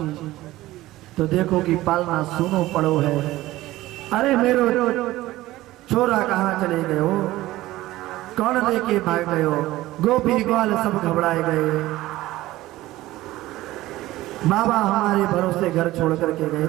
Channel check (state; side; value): quieter; left; 16.9 dB